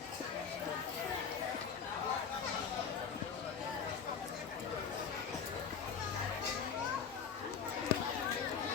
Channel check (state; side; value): quieter; right; 6.7 dB